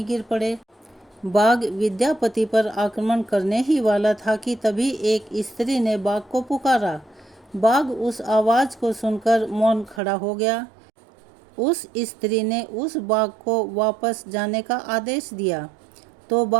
गिर पड़े। बाघ विद्यापति पर आक्रमण करने ही वाला था कि तभी एक स्त्री ने बाघ को पुकारा। बाघ उस आवाज़ को सुनकर मौन खड़ा हो गया। उस स्त्री ने उस बाघ को वापस जाने का आदेश दिया तो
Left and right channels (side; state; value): left; drops out; at 10.0 s